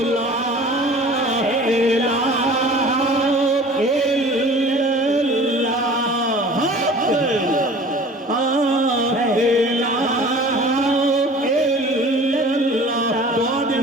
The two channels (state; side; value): normal; both; correlation 0.44